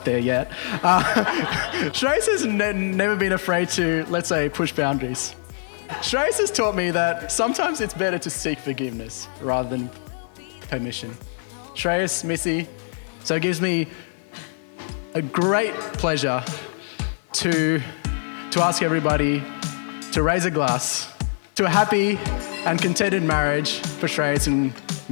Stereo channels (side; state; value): right; silent; digital silence